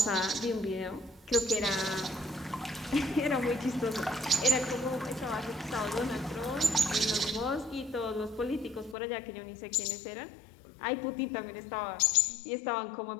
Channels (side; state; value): right; drops out; at 9.0 s